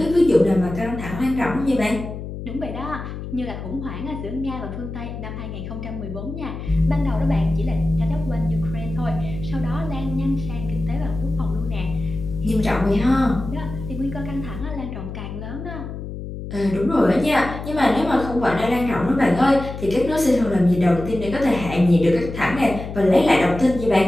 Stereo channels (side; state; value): left; noise; hum, 9 dB below the sound